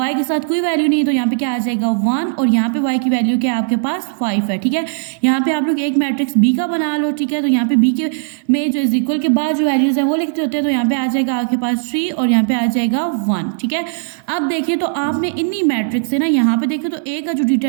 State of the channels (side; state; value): left; silent; 68 dB below the other